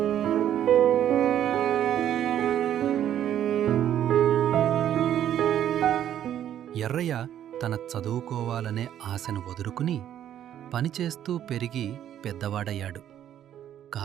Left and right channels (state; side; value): quieter; left; 10.7 dB